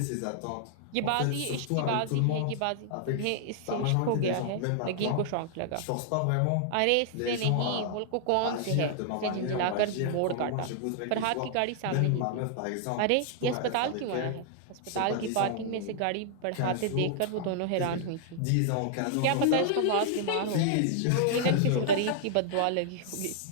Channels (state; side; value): different; both; correlation -0.01